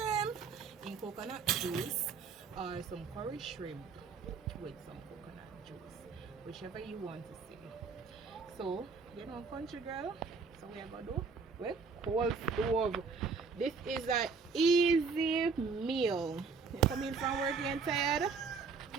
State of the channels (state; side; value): quieter; left; 5.1 dB